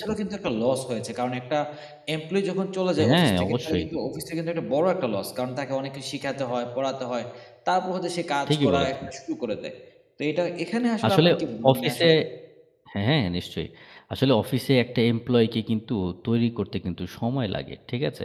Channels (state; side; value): identical; both; correlation 1.00